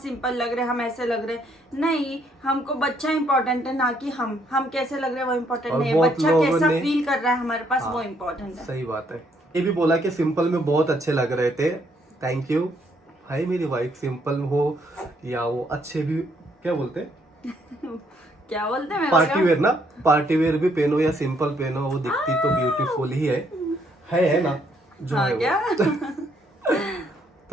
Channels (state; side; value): normal; both; correlation 0.70